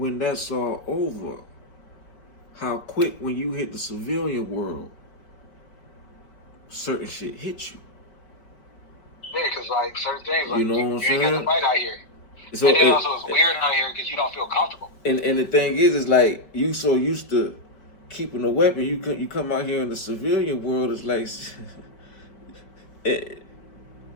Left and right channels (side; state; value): right; late; 4.8 ms